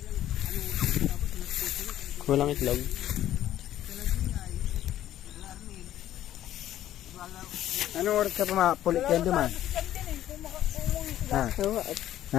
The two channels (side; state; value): right; quieter; 12.5 dB